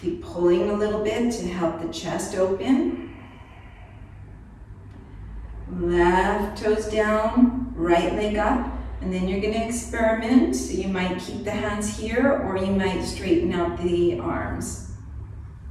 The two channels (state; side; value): identical; both; correlation 1.00